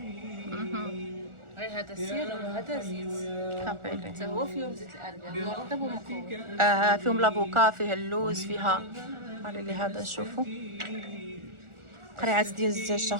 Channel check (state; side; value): late; left; 1.4 ms